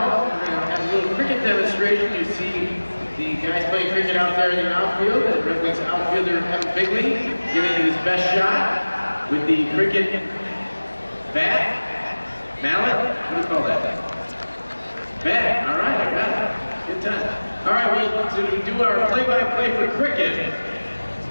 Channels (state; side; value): inverted; both; correlation -1.00